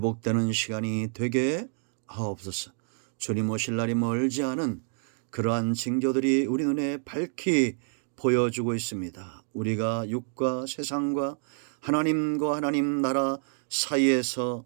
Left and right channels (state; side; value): silent; left; 59 dB below the other